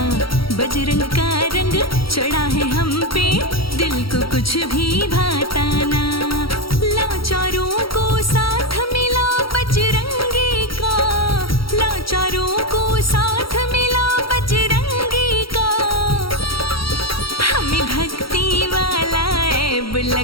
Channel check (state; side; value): late; right; 0.75 ms